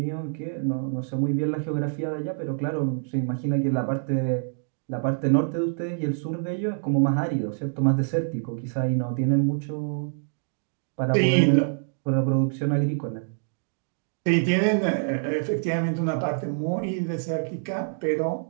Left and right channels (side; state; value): left; silent; digital silence